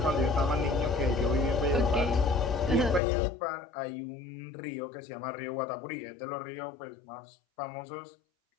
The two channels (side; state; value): right; drops out; at 3.0 s